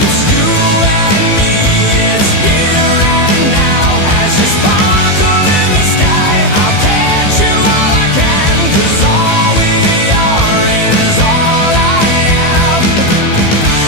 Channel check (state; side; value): late; right; 15 ms